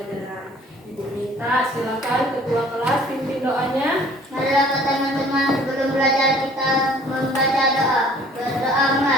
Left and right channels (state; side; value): normal; both; correlation 0.53